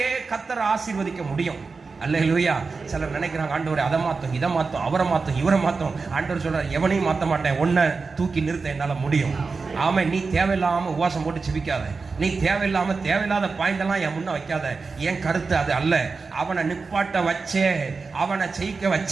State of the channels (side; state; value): left; quieter; 4.4 dB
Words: கர்த்தர் ஆசீர்வதிக்க முடியும். அல்லேலூயா. சிலர் நினைக்கிறாங்க, ஆண்டவரே அதை மாத்தும், இதை மாத்தும், அவரை மாத்தும், இவரை மாத்தும். ஆண்டவர் சொல்றார், எவனையும் மாத்த மாட்டேன், உன்னை தூக்கி நிறுத்த என்னால முடியும். ஆமா, நீ தேவையில்லாம உபவாசம் போட்டு சிபிக்காத, நீ தேவையில்லாத பாயிண்ட் எல்லாம் என் முன்ன வைக்காத. என் கருத்து அது அல்ல. அவனை நிப்பாட்ட வச்சே, அவனை ஜெயிக்க